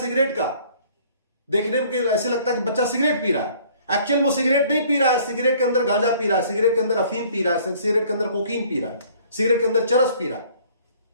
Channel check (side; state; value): both; inverted; correlation -0.56